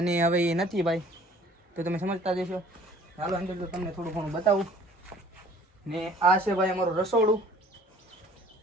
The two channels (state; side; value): normal; both; correlation 0.52